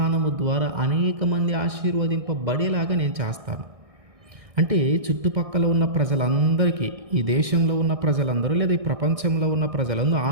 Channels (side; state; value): left; late; 1.6 ms